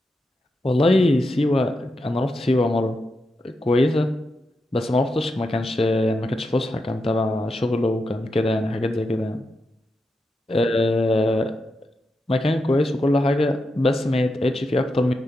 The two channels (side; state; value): both; normal; correlation 0.86